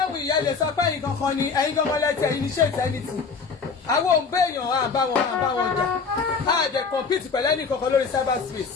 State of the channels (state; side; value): quieter; right; 5.2 dB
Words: wù ìyá lè sọ pé ẹ̀yin kankan ni ẹ̀yin kankan lẹ́tẹ̀ ẹ̀yin ní ṣe ìtẹ́nìtì àwọn òun béèyàn à bá wọn jà á dẹ̀ compete pẹ̀lú ẹnì kankan lórí cyber space